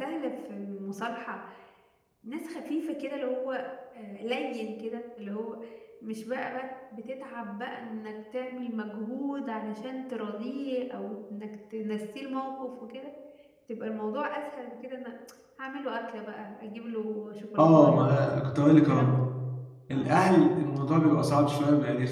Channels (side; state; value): both; identical; correlation 1.00